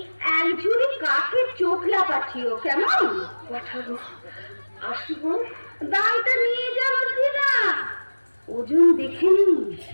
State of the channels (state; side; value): inverted; both; correlation -1.00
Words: এক ঝুড়ি কাঠের চোখলা পাঠিও কেমন পাঠাবো আসি বোন দামটা নিয়ে যাবো না ওজন দেখে নি